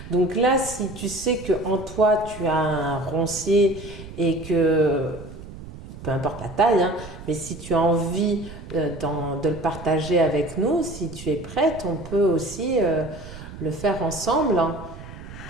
Donc là, si tu sais qu'en toi, tu as un roncier et que, peu importe la taille, hein, mais si tu as envie de le partager avec nous, si tu es prête, on peut aussi le faire ensemble, hein.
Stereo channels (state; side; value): noise; right; rumble, 14 dB below the sound